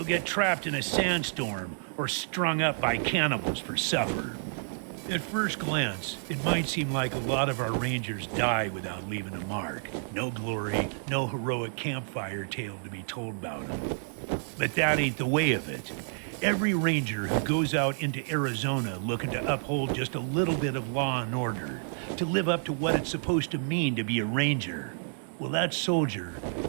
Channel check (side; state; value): left; silent; digital silence